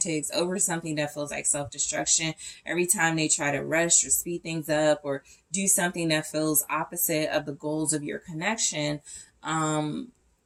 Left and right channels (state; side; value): identical; both; correlation 1.00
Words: over something that feels like self-destruction. Every time they try to rush or speed things up or do something that feels opposite of the goals of your connection,